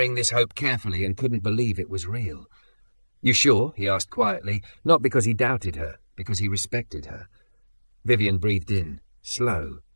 this hope carefully and couldn't believe it was real. "You sure?" he asked quietly, not because he doubted her, because he respected her. Vivian breathed in, slow,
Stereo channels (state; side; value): inverted; both; correlation -1.00